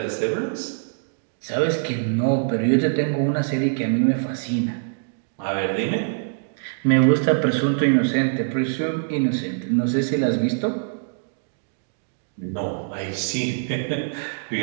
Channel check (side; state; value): left; silent; digital silence